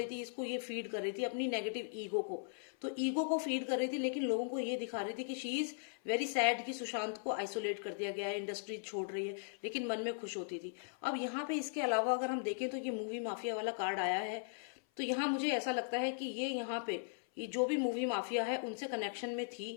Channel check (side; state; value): right; silent; 52 dB below the other